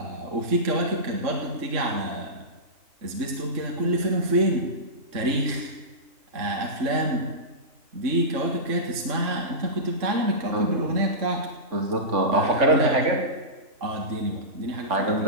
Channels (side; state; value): left; late; 3.6 ms